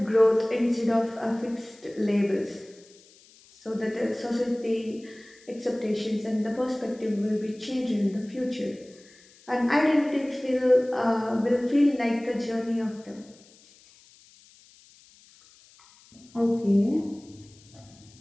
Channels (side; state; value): left; noise; hiss, 26 dB below the sound